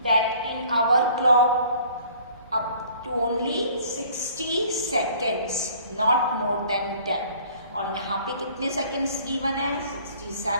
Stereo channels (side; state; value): both; inverted; correlation -0.54